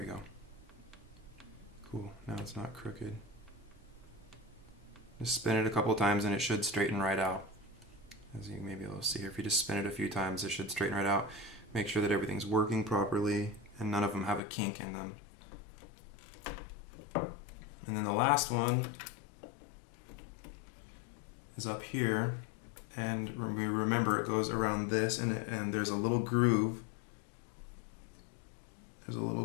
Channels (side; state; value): right; drops out; at 14.4 s